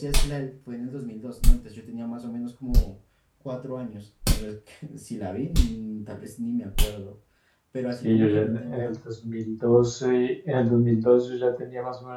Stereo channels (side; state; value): both; identical; correlation 1.00